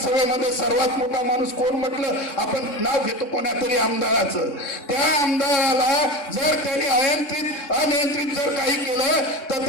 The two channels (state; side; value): late; right; 3.6 ms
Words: सर्वात मोठा माणूस कोण म्हटलं, आपण नाव घेतो कोणा तरी आमदाराचं. त्या आमदाराला जर त्यांनी अनियंत्रित जर काही केलं तर